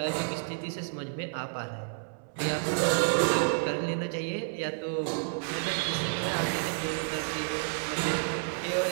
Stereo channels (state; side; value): silent; left; 58 dB below the other